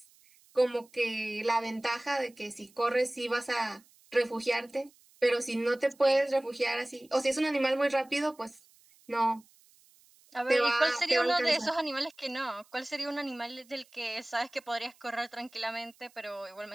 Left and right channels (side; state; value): right; noise; hiss, 29 dB below the sound